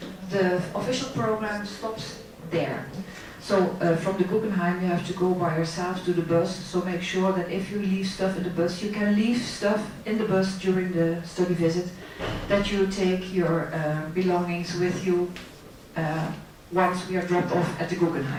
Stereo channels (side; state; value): both; identical; correlation 1.00